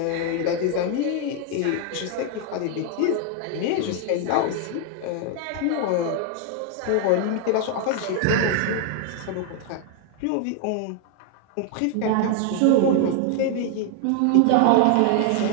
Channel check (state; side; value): different; both; correlation 0.00